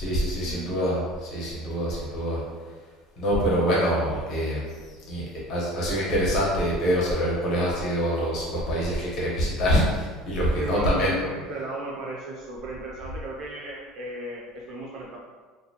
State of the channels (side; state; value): both; normal; correlation 0.43